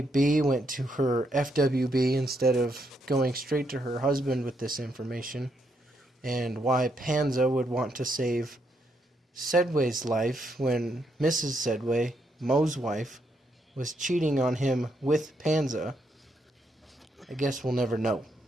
Bee went to her FWB instead of going straight to her husband with this information, and why Panza would want to save Sedway's life when Mrs. Sedway, Moe's wife, was cheating on him with Panza, I guess we'll never know.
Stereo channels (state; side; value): normal; both; correlation 0.77